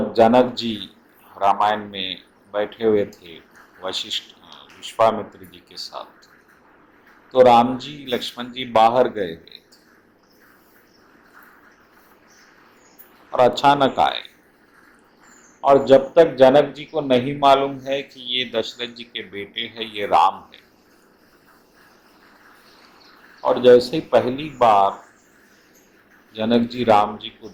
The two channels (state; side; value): identical; both; correlation 1.00